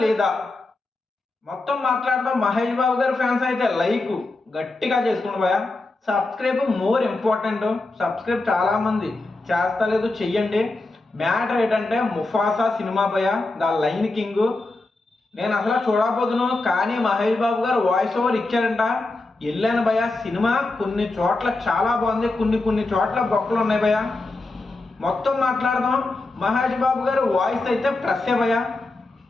లేదా మొత్తం మాట్లాడదాం. మహేష్ బాబు గారి ఫ్యాన్స్ అయితే లైక్ గట్టిగా చేసుకోండి భయ్య. Subscribe more important. సబ్స్క్రైబ్ చాలా మంది చేస్తలేదు, చెయ్యండి. మ్యాటర్ ఏంటంటే ముఫాసా సినిమా భయ్య, ద లైన్ కింగ్. నేను అసలు చూడకపోదును, కానీ మహేష్ బాబు గారు వాయిస్ ఓవర్ ఇచ్చారంట. వెళ్ళాను భయ్య. సినిమా కొన్ని చోట్ల చాలా బాగుంది, కొన్ని చోట్ల బొక్కలు ఉన్నాయి భయ్య. మొత్తం మాట్లాడదాం. మహేష్ బాబు గారు వాయిస్ అయితే ప్లస్సే భయ్య.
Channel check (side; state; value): right; quieter; 3.1 dB